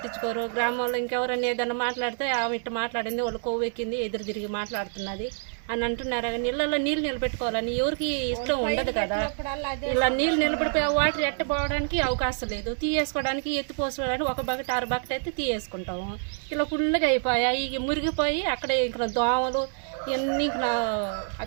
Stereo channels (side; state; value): left; silent; 60 dB below the other